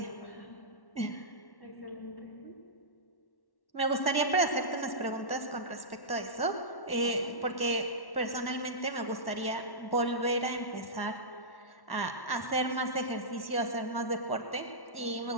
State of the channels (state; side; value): late; right; 1.1 ms